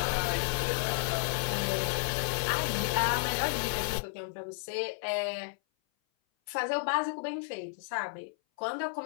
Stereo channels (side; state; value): right; silent; 56 dB below the other